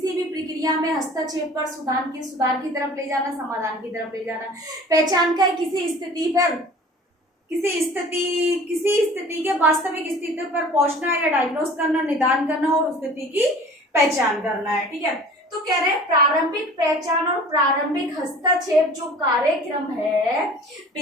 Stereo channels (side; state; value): both; normal; correlation 0.45